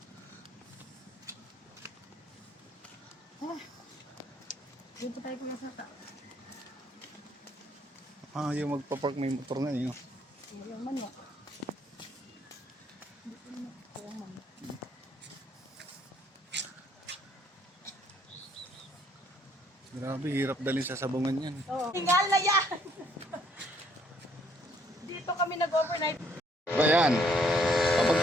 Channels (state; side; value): normal; both; correlation 0.66